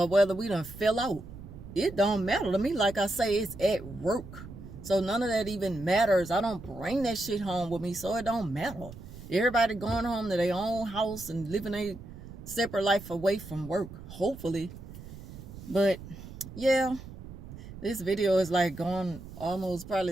whether we done fell out. It don't matter to me. Like I say, it's at work. So, none of that even matters. I don't bring that shit home with me, so it don't matter. Everybody going home to their own house and living a separate life away from work, hopefully. But, yeah, this video is like going almost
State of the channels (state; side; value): noise; right; rumble, 14 dB below the sound